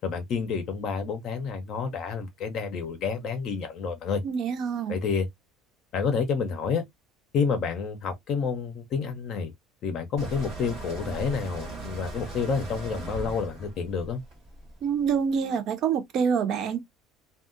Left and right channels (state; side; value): normal; both; correlation 0.51